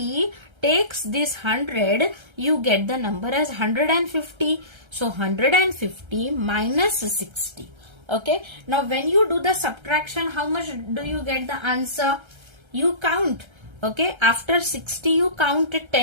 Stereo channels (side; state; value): left; late; 1.3 ms